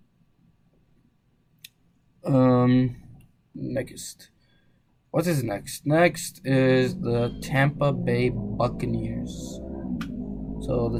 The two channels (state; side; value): identical; both; correlation 1.00